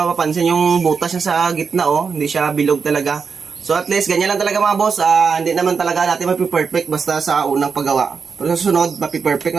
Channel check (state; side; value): quieter; left; 5.6 dB